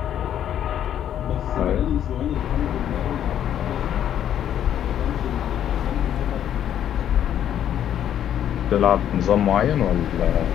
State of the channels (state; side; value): quieter; right; 10.3 dB